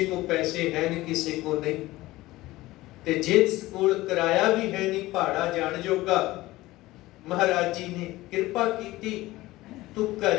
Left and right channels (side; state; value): right; quieter; 18.2 dB